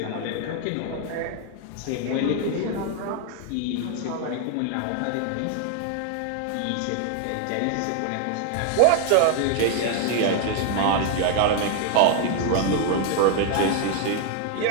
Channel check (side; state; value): both; different; correlation 0.00